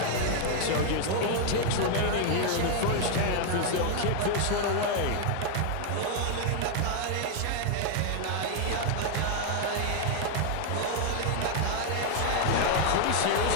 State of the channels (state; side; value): different; both; correlation 0.00